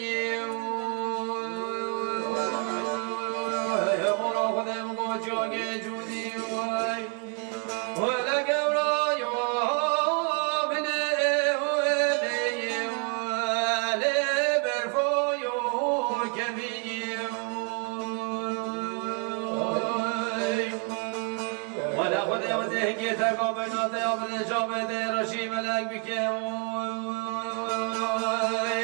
که تقابلات یا بالجامد رشی ملک بکه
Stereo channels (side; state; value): left; quieter; 38.7 dB